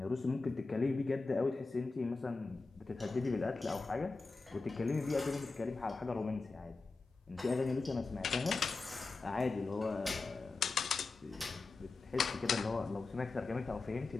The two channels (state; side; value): quieter; right; 3.8 dB